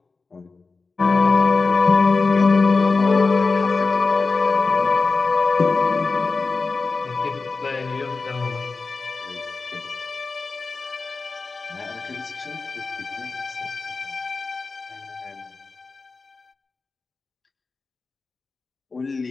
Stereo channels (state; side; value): quieter; right; 4.1 dB